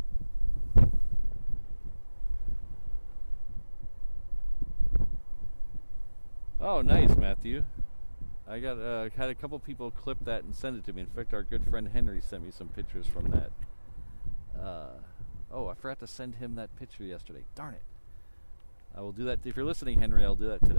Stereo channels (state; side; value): inverted; both; correlation -1.00